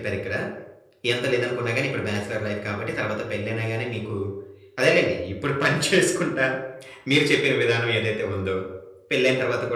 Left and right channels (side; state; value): both; identical; correlation 1.00